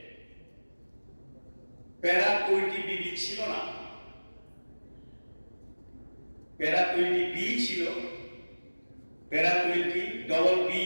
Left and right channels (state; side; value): inverted; both; correlation -1.00